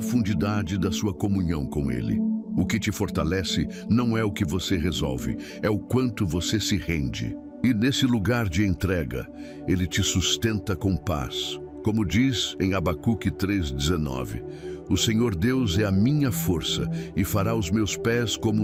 da sua comunhão com ele. O que te fortalece não é o que você resolve, é o quanto você se rende. E nesse lugar de entrega, ele te sustenta com paz. Como diz em Abacuque 3:19, o Senhor Deus é a minha força e fará os meus pés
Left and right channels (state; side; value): identical; both; correlation 1.00